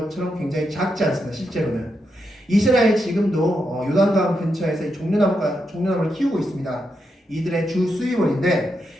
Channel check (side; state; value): both; normal; correlation 0.84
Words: 굉장히 작지 않습니다. 실제로는 이스라엘 지금도 요단강 근처에서 이 종려나무를 키우고 있습니다. 이들의 주 수입원인데